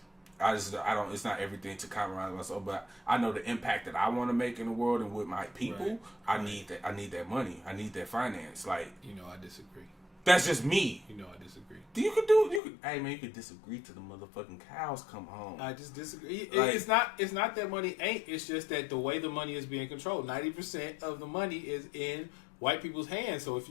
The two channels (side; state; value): right; drops out; at 12.6 s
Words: It's not everything to compromise myself, but I know the impact that I want to make in the world and with my people. Right. I need that money. I need that finance. Like, you know, I disagree. That's just me. You know, I disagree. Hey man, you could disagree till the motherfucking cows come home. I just disagree. It's not that money ain't. It's just that the way the money is being controlled, 90% of the money is in white people's hands. So if